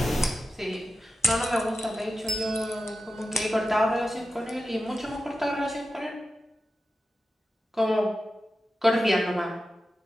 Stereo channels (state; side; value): normal; both; correlation 0.92